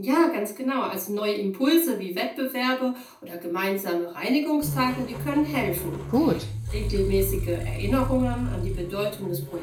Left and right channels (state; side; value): identical; both; correlation 1.00